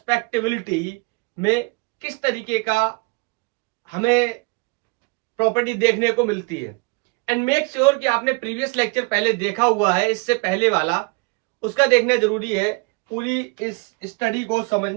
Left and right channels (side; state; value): left; quieter; 29.9 dB